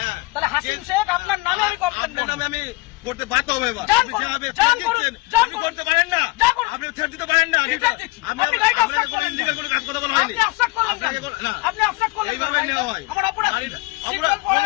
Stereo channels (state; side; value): quieter; right; 23.6 dB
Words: তাহলে হাসিম শেখ আপনার নামে আমি কমপ্লেন করব। আমি করতে বাধ্য হবে। এবার আপনি করতে পারেন না, আপনি ছেড়ে দিতে পারেন না। আমি আপনাকে কোনো ইলিগাল কোনো কাজ কথা বলা হয়নি। আপনি অফসাইড করলেন কেন? আপনি অফসাইড করলেন এইভাবে নেওয়া হয়। আমার অপরাধ